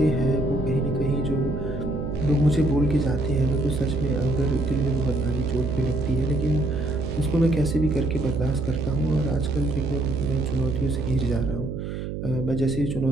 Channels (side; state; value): right; noise; hum, 6 dB below the sound